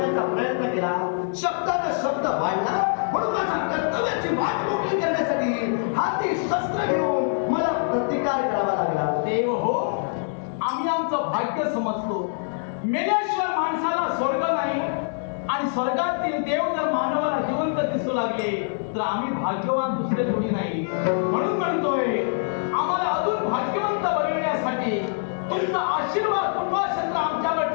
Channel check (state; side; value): silent; right; digital silence